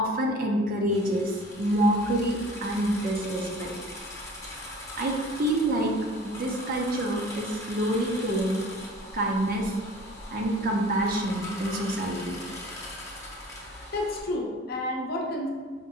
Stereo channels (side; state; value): both; normal; correlation 0.46